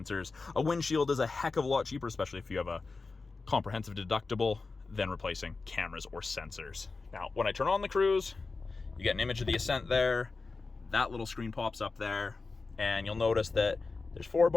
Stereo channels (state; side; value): quieter; right; 4.0 dB